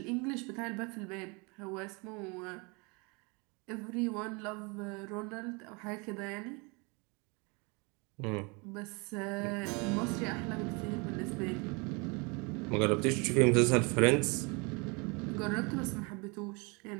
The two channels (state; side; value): quieter; left; 29.8 dB